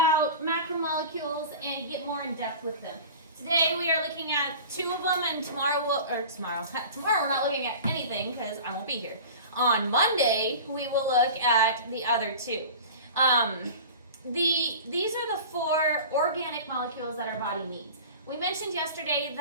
macromolecules and get more in depth with them. Today we are looking at 2 of them, and tomorrow we're not looking at anything because I won't be here. On Monday, we will look at the other 2. These are the 4 organic molecules that our body needs. We mentioned yesterday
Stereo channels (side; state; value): both; inverted; correlation -0.36